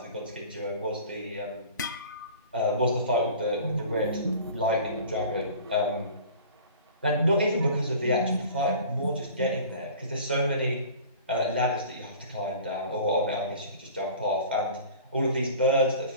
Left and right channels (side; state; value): both; inverted; correlation -0.43